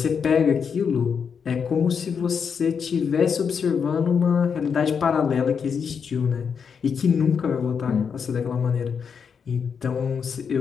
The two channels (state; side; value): quieter; right; 6.5 dB